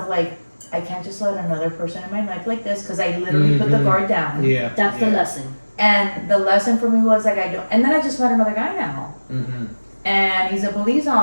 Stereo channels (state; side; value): inverted; both; correlation -1.00